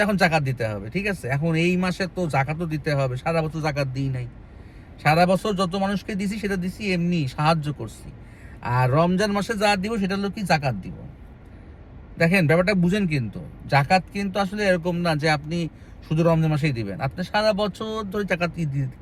এখন জাকাত দিতে হবে, ঠিক আছে। এখন এই মাসে তো জাকাতও দিতে হবে, সারা বছর জাকাত দিই নাই। সারা বছর যত মানুষকে দিছি সেটা দিছি এমনি সাহায্য করছি। আর রমজান মাসে যা দিব সেটা হলো কি জাকাত দিব। দেখেন ব্যাপারটা বুঝেন, কিন্তু জাকাত কিন্তু আসলে এরকম না যে আপনি শুধু রমজান মাসেই দিবেন। আপনি সারা বছর ধরে জাকাত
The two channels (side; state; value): both; identical; correlation 1.00